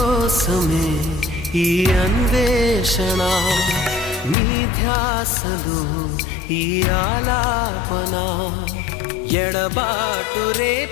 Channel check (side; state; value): right; drops out; at 4.4 s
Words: ఈ అన్వేషణ నీ ధ్యాసలో ఈ ఆలాపన ఎడబాటు